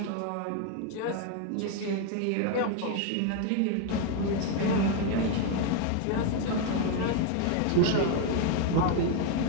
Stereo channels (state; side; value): different; both; correlation 0.01